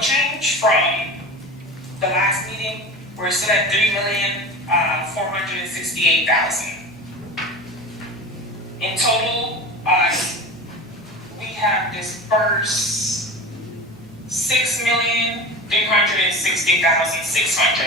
from the last meeting. We're still at 3,468,000. In total, we have dispersed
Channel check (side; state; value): both; normal; correlation 0.31